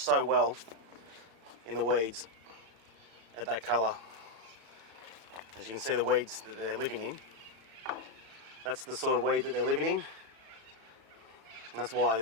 well in the weeds at that colour. As you can see, the weeds that they're living in, that's the sort of weed that they're living in, and that's why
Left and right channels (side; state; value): left; late; 34 ms